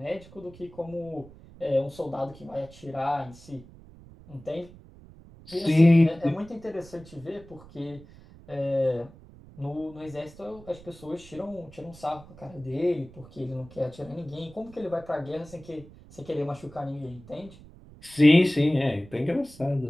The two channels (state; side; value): noise; right; rumble, 21 dB below the sound